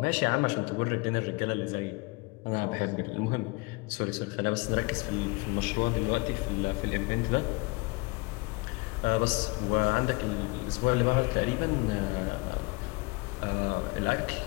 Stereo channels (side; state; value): right; quieter; 26.6 dB